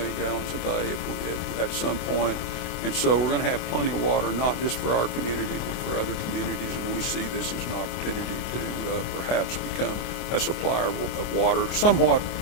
gallons a day at some point. And so we're going to have plenty of water, not just for our community, but for other communities. And we see this as an opportunity to perhaps become a supplier of water. Somewhat,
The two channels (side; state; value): right; late; 24 ms